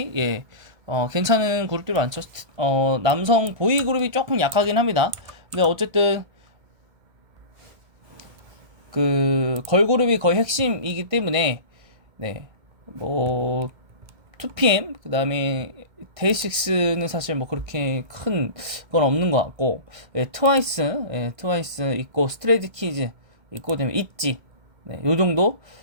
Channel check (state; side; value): late; left; 1.5 ms